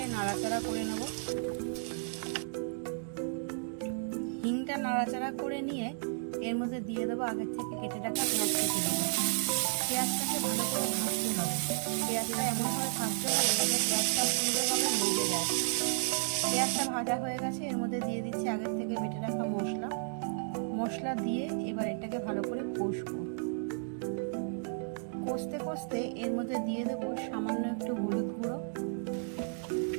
নাড়াচাড়া করে নেব। হিংটা নাড়াচাড়া করে নিয়ে এর মধ্যে দিয়ে দেবো আগে থেকে কেটে রাখা পেঁয়াজ কেটে দেবো। পেঁয়াজটাকে ভালো করে ভাজতে হবে। পেঁয়াজটা এমনভাবে ভাজতে হবে যাতে পেঁয়াজটা সুন্দরভাবে ভেজে যায়। পেঁয়াজটা ভাজা হয়ে গেছে। এর মধ্যে দিয়ে দিচ্ছি আগের থেকে বেটে রাখা মশলা দিয়ে এবার এটাকে ভালো করে কষবো। কষতে কষতে এর মধ্যে দিয়ে দেবো সামান্য একটু হলুদ গুঁড়ো,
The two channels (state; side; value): silent; left; digital silence